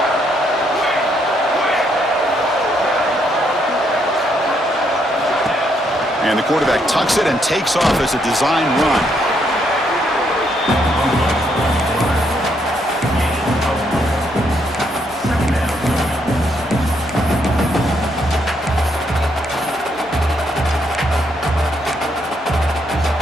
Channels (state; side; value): normal; both; correlation 0.74